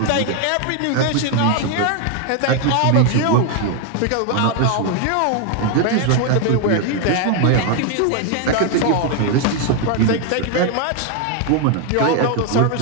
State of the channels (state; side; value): different; both; correlation 0.00